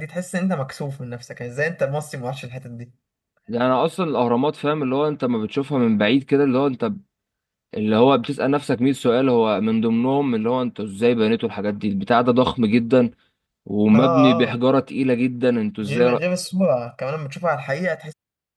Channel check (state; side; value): identical; both; correlation 1.00